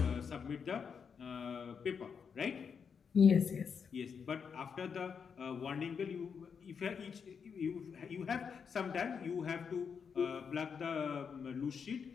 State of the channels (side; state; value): right; quieter; 6.4 dB